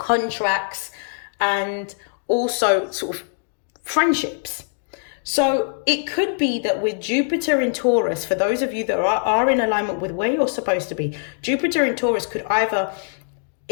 and also sort of friendships. So it could be that with Jupiter in Taurus, for those of you that are in alignment with where you're supposed to be, Jupiter in Taurus could either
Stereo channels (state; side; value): silent; right; digital silence